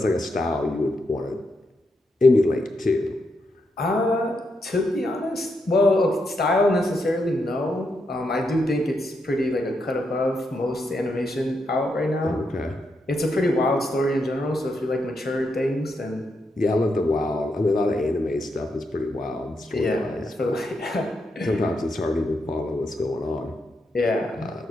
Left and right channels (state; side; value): normal; both; correlation 0.82